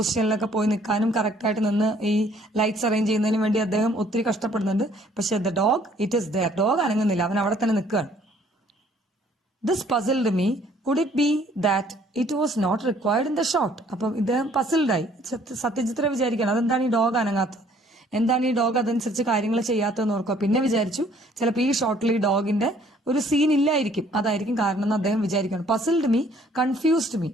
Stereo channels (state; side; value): normal; both; correlation 0.60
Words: പോയി നിൽക്കാനും കറക്റ്റായിട്ട് നിന്ന് ഈ ലൈറ്റ്സ് അറേഞ്ച് ചെയ്യുന്നതിന് വേണ്ടി അദ്ദേഹം ഒത്തിരി കഷ്ടപ്പെടുന്നുണ്ട്. പക്ഷെ the dog it is there. Dog അനങ്ങുന്നില്ല, അവൻ അവിടെ തന്നെ നിൽക്കുകയാണ്. This puzzled me. Could it be that it was not required in the shot? അപ്പം ഇദ്ദേഹം പസിൽഡായി. സത്യജിത്ര വിചാരിക്കണം അതെന്താണ് ഈ ഡോഗ് അനങ്ങാത്തത്, എന്താണ് ഈ ഡോഗ് അതനുസരിച്ച് കാര്യങ്ങൾ ചെയ്യാത്തതെന്ന് ഓർക്കുക. പിന്നെ വിചാരിച്ചു ചിലപ്പോൾ ഈ ഷോട്ടിൽ ഈ ഡോഗിന്റെ ഒരു സീൻ ഇല്ലായിരിക്കും, അതായിരിക്കും കാരണം എന്ന് അദ്ദേഹം വിചാരിക്കണം. പസിൽഡ് മീ, കൺഫ്യൂസ്ഡ് മീ,